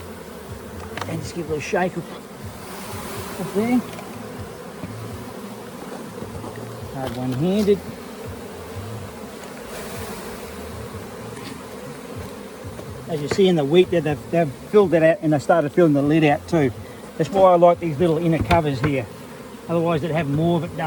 And just give it a little shake up there. Hard one-handed. As you see in the wheat there, they've filled that out and they started filling the lid out too. That's why I like these little inner covers here. Otherwise they'd have more of it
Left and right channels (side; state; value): both; identical; correlation 1.00